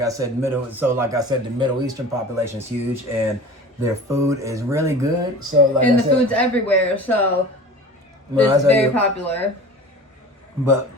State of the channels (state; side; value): normal; both; correlation 0.38